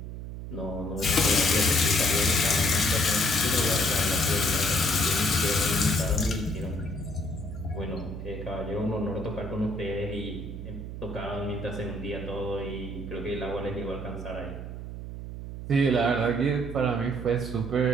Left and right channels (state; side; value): noise; right; hum, 8 dB below the sound